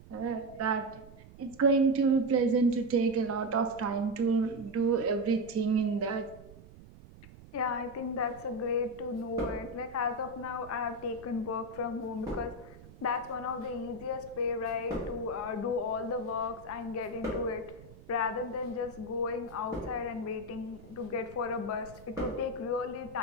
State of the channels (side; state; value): right; noise; rumble, 19 dB below the sound